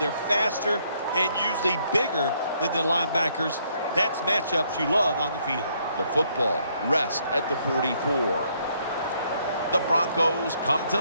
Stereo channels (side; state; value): both; inverted; correlation -0.70